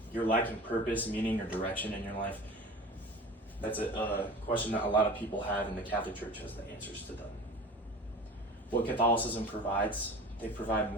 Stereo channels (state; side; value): normal; both; correlation 0.37